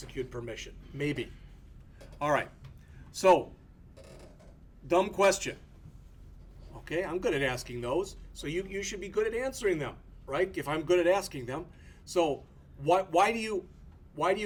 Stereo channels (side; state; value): both; identical; correlation 1.00